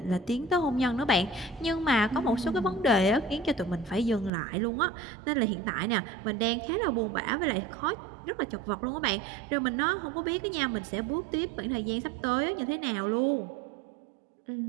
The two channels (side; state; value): left; drops out; at 4.3 s